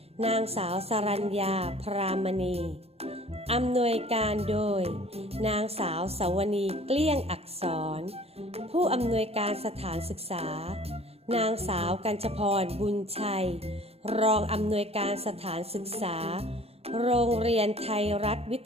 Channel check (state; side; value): late; left; 0.29 ms